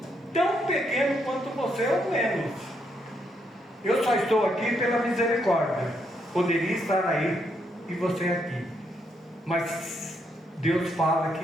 tão pequeno quanto você ou menos. Eu só estou aqui pela misericórdia. Poderia estar aí e você aqui, mas Deus fala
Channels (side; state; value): both; normal; correlation 0.76